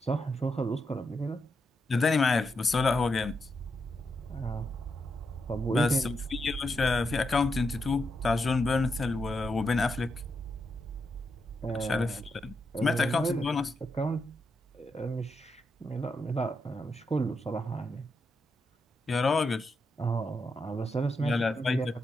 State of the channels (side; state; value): both; normal; correlation 0.84